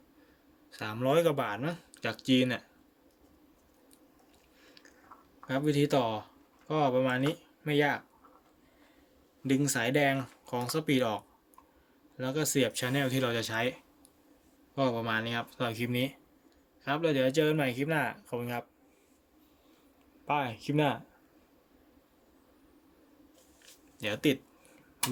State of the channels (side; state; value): both; identical; correlation 1.00